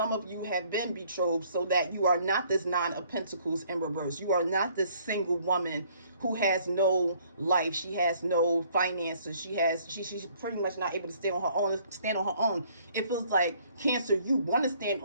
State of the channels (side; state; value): both; inverted; correlation -0.61